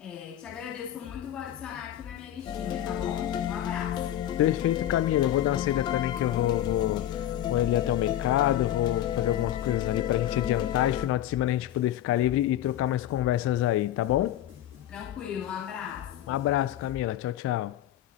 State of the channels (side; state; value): right; quieter; 12.3 dB